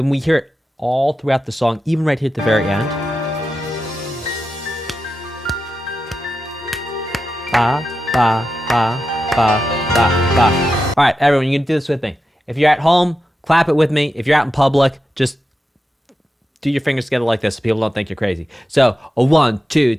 we hear it all throughout the song, even right here at the very end. Ba, ba, ba, ba, ba, ba. All right, everyone, you can do this with me. If you're at home, clap it with me. If you're out in public, just do your fingers together like this so people don't think you're crazy. So, a 1, 2,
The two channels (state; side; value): normal; both; correlation 0.90